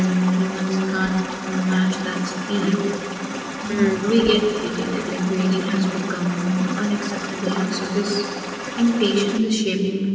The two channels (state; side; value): identical; both; correlation 1.00